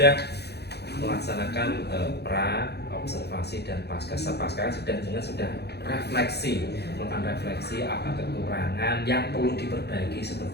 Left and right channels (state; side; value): late; right; 0.48 ms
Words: melaksanakan pra, observasi dan pasca sudah refleksi, melakukan refleksi apa kekurangan yang perlu diperbaiki